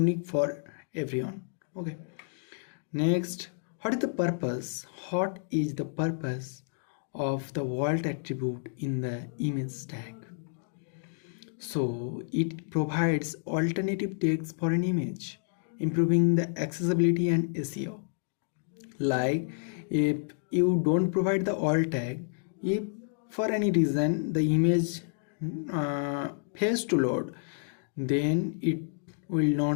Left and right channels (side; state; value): right; silent; digital silence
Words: for everyone. Okay. Next, what is the purpose? What is the purpose of the vault attribute in the image tag? So it provides alternative text for an image, improving the accessibility and SEO. Like, if you don't provide the alt tag, if for any reason the image fails to load, then it will